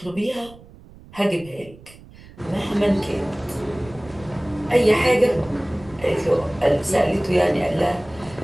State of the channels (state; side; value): noise; right; rumble, 21 dB below the sound